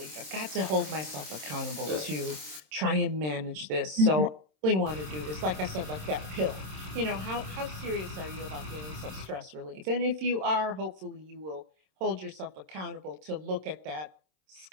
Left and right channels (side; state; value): left; late; 26 ms